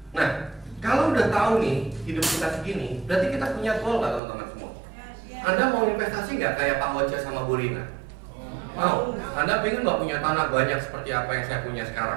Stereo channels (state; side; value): drops out; left; at 4.2 s